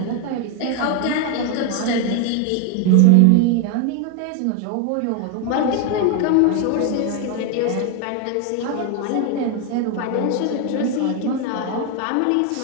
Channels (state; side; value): different; both; correlation 0.01